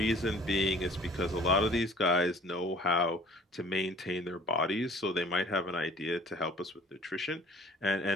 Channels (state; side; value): normal; both; correlation 0.51